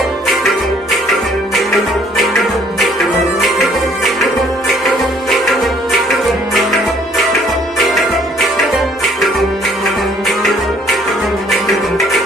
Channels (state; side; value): normal; both; correlation 0.61